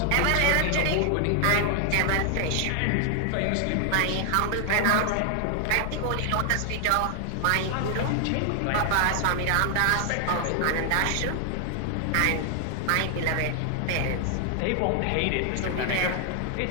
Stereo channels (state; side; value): different; both; correlation 0.00